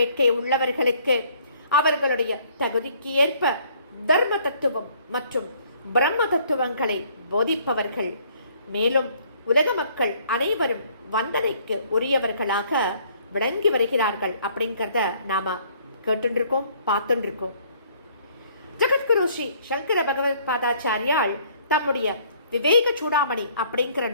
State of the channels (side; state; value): both; inverted; correlation -0.61